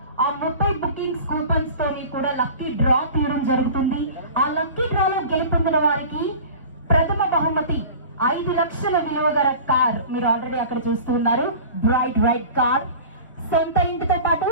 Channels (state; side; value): inverted; both; correlation -0.39